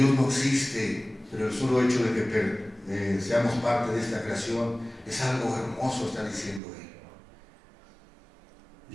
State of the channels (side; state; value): left; drops out; at 6.6 s